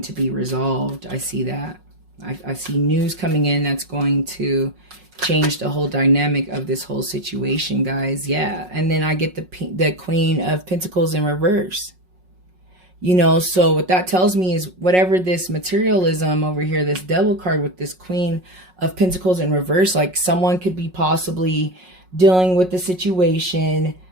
to be resolved. I see that. I see news coming in that's going to change the whole dynamic of this whole situation, guys. Yeah, and then I get the Queen of Pentacles in reverse. You know, so what that tells me is whatever this materialism over here, this Devil card with this Queen of Pentacles in reverse, like someone could be possibly dealing with the situation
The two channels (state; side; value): late; left; 5.5 ms